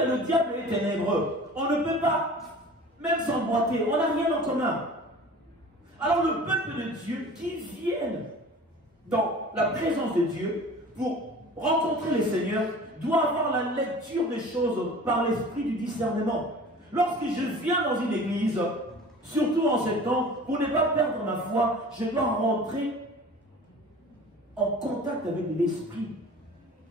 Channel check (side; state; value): both; normal; correlation 0.42